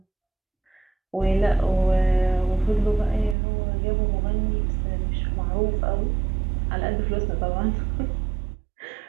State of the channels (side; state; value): left; drops out; at 3.4 s